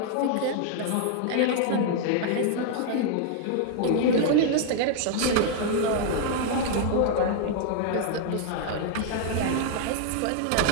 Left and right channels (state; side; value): different; both; correlation 0.00